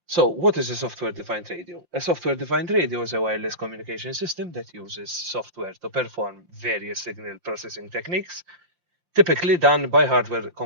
So, what is a software-defined radio? A software-defined radio is a wireless communication system that uses software to perform various signal processing techniques, typically done by hardware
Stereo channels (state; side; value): late; left; 5.7 ms